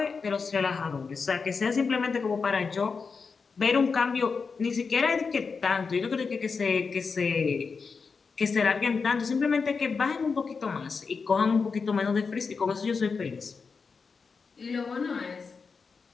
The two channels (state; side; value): quieter; right; 5.1 dB